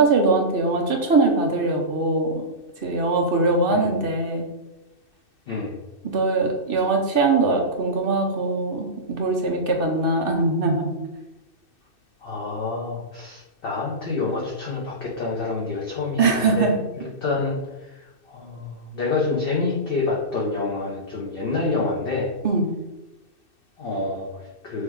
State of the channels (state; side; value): late; right; 2.6 ms